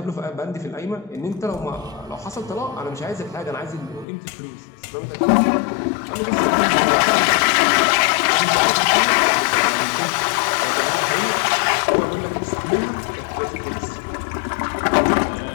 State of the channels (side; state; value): right; drops out; at 4.0 s